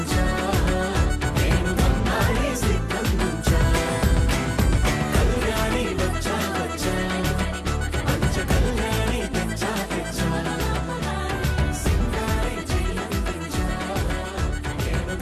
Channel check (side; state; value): both; identical; correlation 1.00